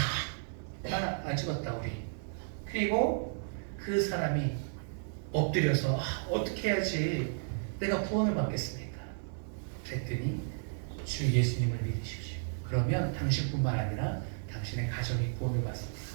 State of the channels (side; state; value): left; silent; 56 dB below the other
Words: 안 죽었다 우리. 그리고 그 사람이 엎드려서 어떻게 해야지 내가 구원을 받겠습니까? 그랬더니 주 예수님을 믿으십시오. 그러면 당신뿐만 아니라 당신의 가정이 구원을 받습니다.